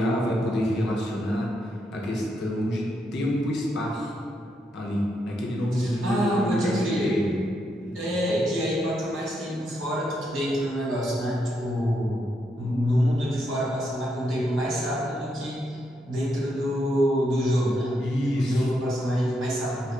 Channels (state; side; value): normal; both; correlation 0.80